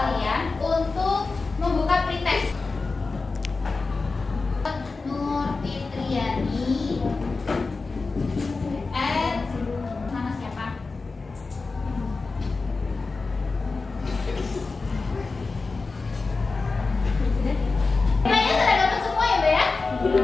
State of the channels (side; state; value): right; quieter; 4.0 dB